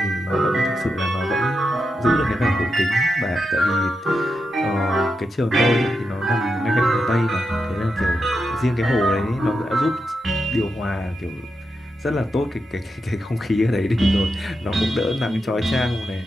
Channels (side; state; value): both; normal; correlation 0.86